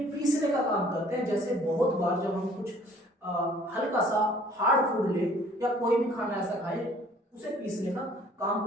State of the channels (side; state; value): both; normal; correlation 0.55